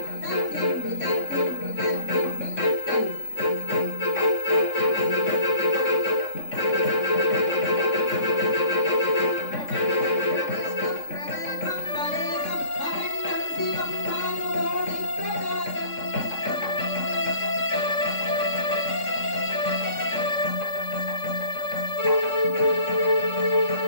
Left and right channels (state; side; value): late; right; 3.6 ms